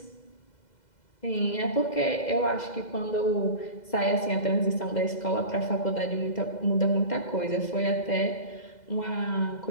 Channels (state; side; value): late; right; 2.0 ms